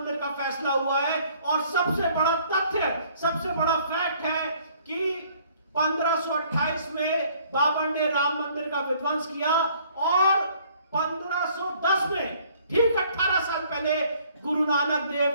का फैसला हुआ है। और सबसे बड़ा तथ्य, सबसे बड़ा फैक्ट है कि 1528 में बाबर ने राम मंदिर का विध्वंस किया और 1510 में ठीक 18 साल पहले गुरु नानक देव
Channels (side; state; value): both; inverted; correlation -0.60